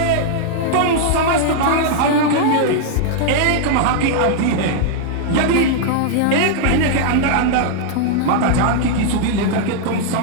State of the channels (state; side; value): different; both; correlation -0.01